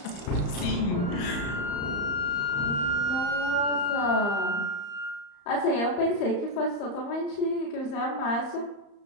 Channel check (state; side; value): late; right; 35 ms